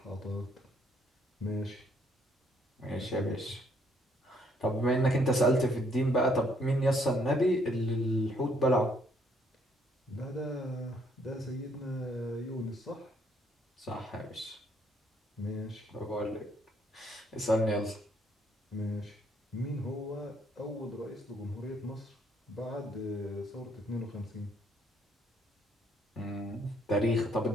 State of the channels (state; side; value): normal; both; correlation 0.68